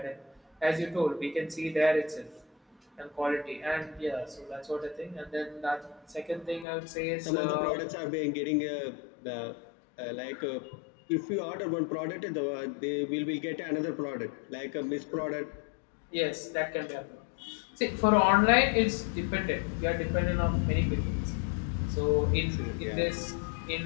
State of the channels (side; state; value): right; drops out; at 6.7 s